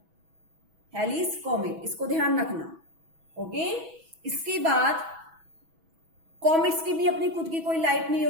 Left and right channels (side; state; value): left; late; 6.1 ms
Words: हेलीज कॉमेट, इसको ध्यान रखना। ओके, इसके बाद कॉमेट्स की भी अपनी खुद की कोई लाइट नहीं